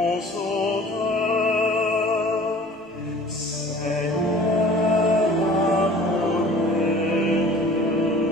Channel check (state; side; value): normal; both; correlation 0.47